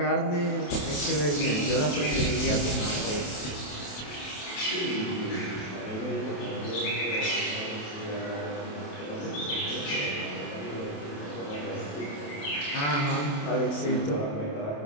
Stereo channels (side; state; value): right; late; 28 ms